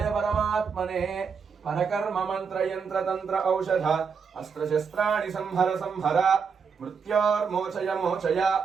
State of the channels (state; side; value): quieter; left; 6.0 dB